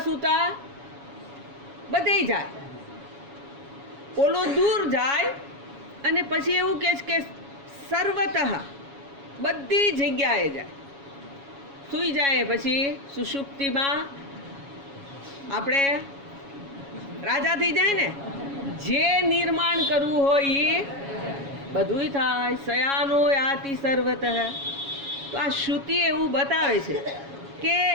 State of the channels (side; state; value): left; late; 7.2 ms